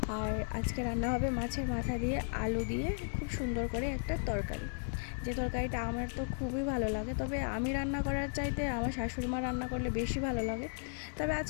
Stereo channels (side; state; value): right; silent; 54 dB below the other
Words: আর আজকে রান্না হবে মাছের মাথা দিয়ে আলু দিয়ে খুব সুন্দর করে একটা তরকারি। যে তরকারিটা আমার তো খুবই ভালো লাগে, তবে আমি রান্না করার চাইতে আমার শাশুড়ি মা রান্না করলে বেশি ভালো লাগে। তবে